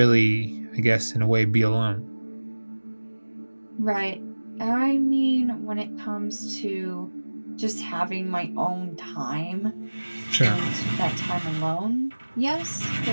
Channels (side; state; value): both; inverted; correlation -1.00